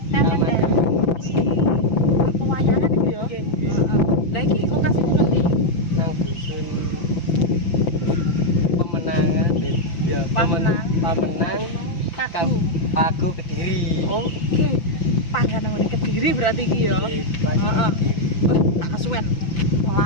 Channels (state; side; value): late; right; 5.9 ms